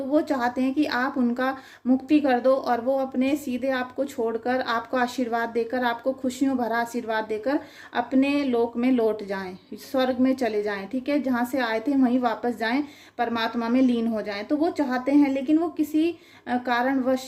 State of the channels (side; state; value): both; identical; correlation 1.00